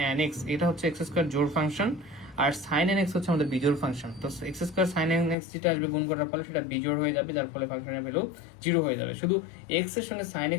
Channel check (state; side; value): drops out; right; at 5.4 s